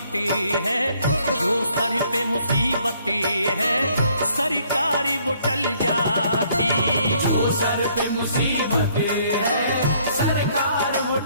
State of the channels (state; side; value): inverted; both; correlation -0.65